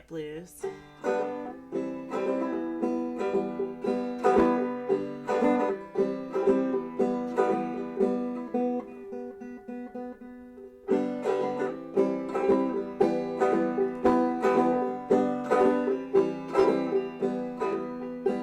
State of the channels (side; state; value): both; identical; correlation 1.00